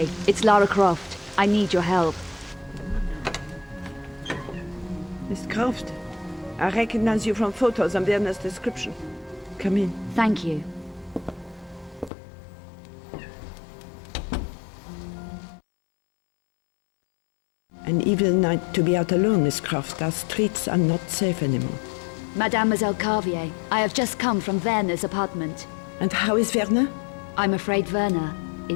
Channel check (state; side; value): drops out; right; at 12.1 s